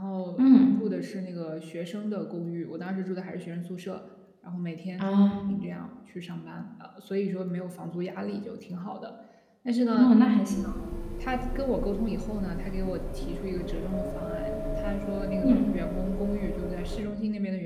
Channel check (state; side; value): identical; both; correlation 1.00